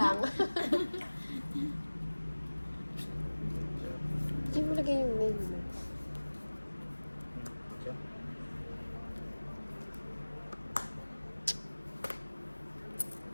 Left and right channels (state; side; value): inverted; both; correlation -1.00